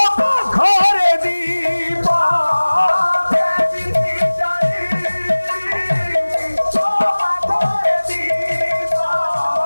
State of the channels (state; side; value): inverted; both; correlation -1.00